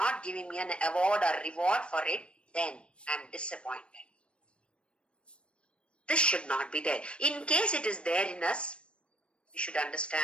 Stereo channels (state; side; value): late; right; 0.057 ms